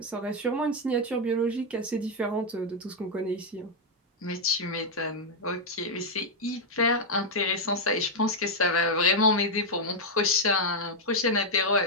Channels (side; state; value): both; normal; correlation -0.01